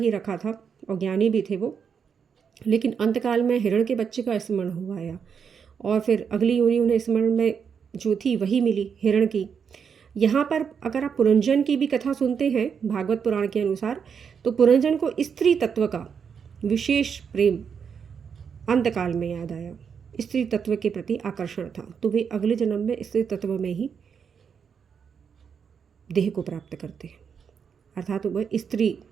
रखा था और ज्ञानी भी थे वो, लेकिन अंतकाल में हिरण के बच्चे का स्मरण हुआ आया और फिर अगली योनि उन्हें स्मरण में जो थी वही मिली हिरण की। यहाँ पर अगर आप पुरंजन की भी कथा सुनते हैं भागवत पुराण के अनुसार, तो पुरंजन को स्त्री तत्व का विशेष प्रेम अंतकाल में याद आया, स्त्री तत्व के प्रति आकर्षण था, तो वे अगले जन्म में स्त्री तत्व में ही देह को प्राप्त करते हैं, अर्थात वह स्त्री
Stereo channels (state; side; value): quieter; left; 6.8 dB